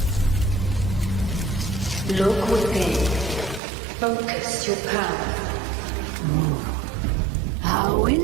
Look within. Focus your power. How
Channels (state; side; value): drops out; left; at 3.6 s